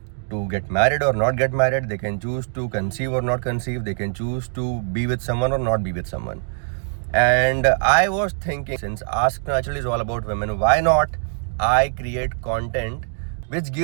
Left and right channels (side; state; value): left; silent; digital silence